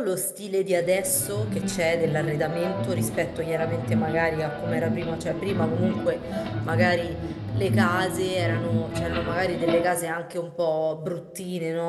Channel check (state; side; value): identical; both; correlation 1.00